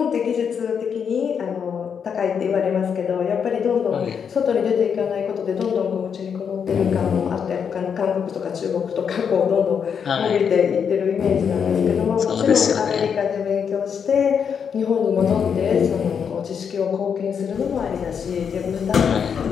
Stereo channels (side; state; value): right; quieter; 7.1 dB